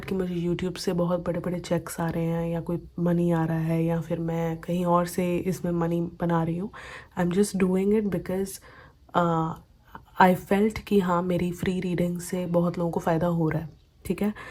कि मुझे यूट्यूब से बहुत बड़े बड़े चेक्स आ रहे हैं या कोई मनी आ रहा है या फिर मैं कहीं और से इसमें मनी बना रही हूँ। I am just doing it because I felt कि हाँ, मेरी फ्री रीडिंग से बहुत लोगों को फ़ायदा हो रहा है। ठीक है?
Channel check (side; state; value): both; identical; correlation 1.00